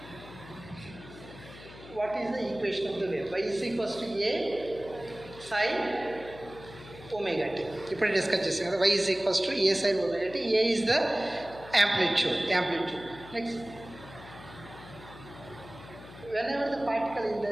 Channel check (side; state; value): left; noise; hum, 17 dB below the sound